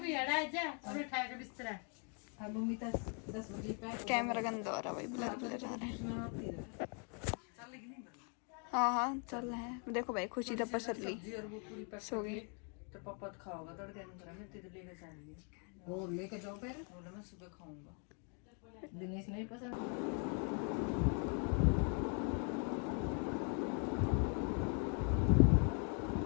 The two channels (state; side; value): quieter; right; 39.2 dB